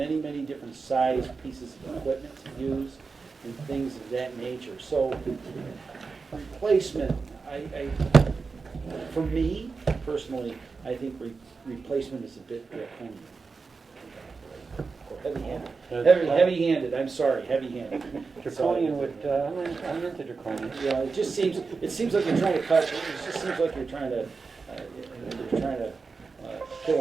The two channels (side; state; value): left; quieter; 4.6 dB